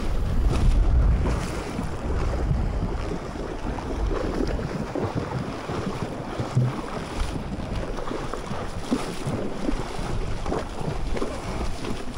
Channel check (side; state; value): both; identical; correlation 1.00